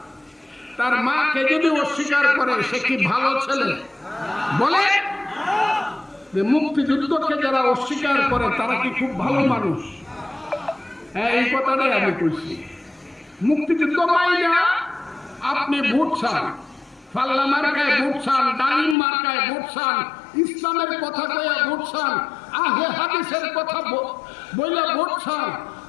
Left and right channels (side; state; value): right; drops out; at 18.9 s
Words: তার মাকে যদি অস্বীকার করে সে কি ভালো ছেলে? বলে মুক্তিযুদ্ধকে যারা অস্বীকার করে তারা কি খুব ভালো মানুষ? হ্যাঁ, এই কথাটাই আমি বলছি। মুক্তিযুদ্ধ মাইনা আপনি ভোট চান, পাল্লা মার্কায় ভোট চান, ডালিম মার্কায় ভোট চান, ইসলামের কথা কয়ে ভোট চান, আহলে হাদিসের কথা বলে ভোট চান,